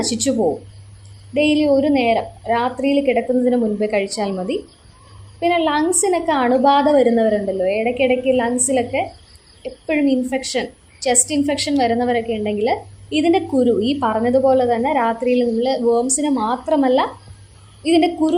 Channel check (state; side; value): identical; both; correlation 1.00